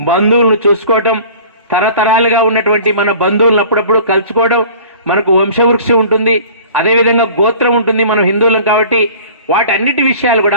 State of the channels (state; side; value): inverted; both; correlation -0.45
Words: చూసుకోవటం, తరతరాలుగా ఉన్నటువంటి మన బంధువులను అప్పుడప్పుడు కలుసుకోవడం, మనకు వంశవృక్షం ఉంటుంది, అదేవిధంగా గోత్రం ఉంటుంది, మనం హిందువులం కాబట్టి వాటన్నిటి విషయాలు